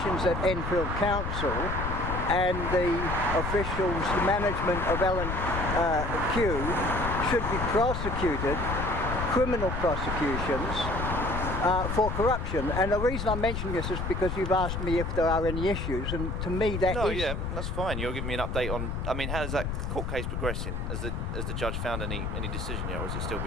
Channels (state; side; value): noise; left; rumble, 3 dB below the sound